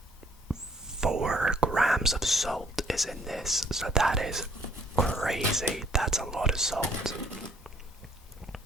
4 grams of salt is in this. So that is crazy. That's a lot of salt.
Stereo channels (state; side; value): normal; both; correlation 0.62